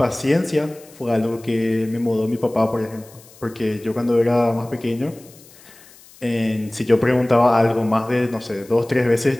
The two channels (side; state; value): left; noise; hiss, 24 dB below the sound